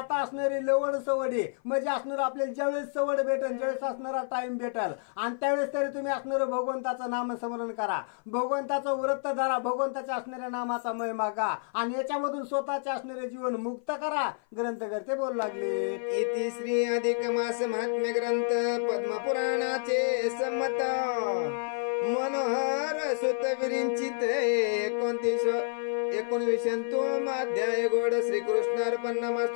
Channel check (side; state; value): right; silent; 55 dB below the other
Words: असणारी लवड सवडी म्हणजे असणार आपल्याला ज्यावेळेस सवड भेटेल ज्यावेळेस असणारा टाइम भेटेल आणि त्यावेळेस तरी तुम्ही असणारं भगवंताचं नामस्मरण करा, भगवंताचं व्रत धरा, भगवंताच्या असणाऱ्या नामाचा महिमा गा आणि याच्यामधून स्वतःचे असणारे जीवन मुक्त करा ग्रंथकर्ते बोलू लागले. इति श्री अधिक मास महात्म्य ग्रंथ पद्मपुराणाचे संमत मनोहर सुत विरिंचित 19 अध्याय गोड श्रीकृष्ण अर्पण